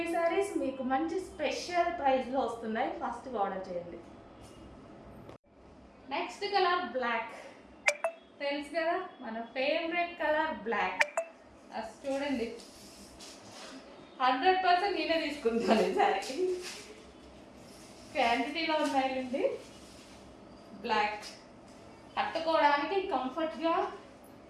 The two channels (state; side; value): identical; both; correlation 1.00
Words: ఈ శారీస్. మీకు మంచి స్పెషల్ ప్రైస్లో వస్తున్నాయి, ఫాస్ట్గా ఆర్డర్ చేయండి. Next colour black. తెలుసు కదా మన ఫేవరెట్ కలర్ బ్లాక్. అది చూడండి, 100% నేనే తీసుకుంటాను ఈ శారీ. క్వాంటిటీలో ఉన్నాయండి. బ్లాక్ కట్టుకోవడానికి కంఫర్ట్గా,